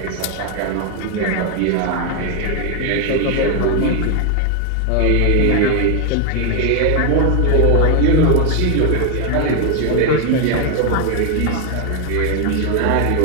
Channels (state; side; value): different; both; correlation 0.01